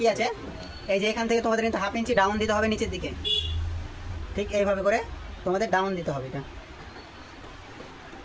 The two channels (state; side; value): identical; both; correlation 1.00